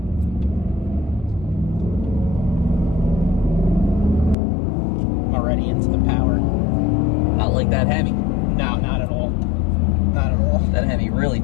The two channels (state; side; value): drops out; right; at 4.4 s